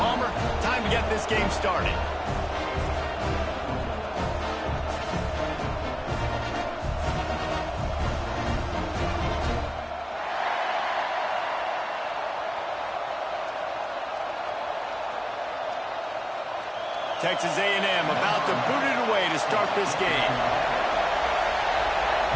Time to get this game started. Texas A&M about to boot it away to start this game.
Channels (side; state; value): both; identical; correlation 1.00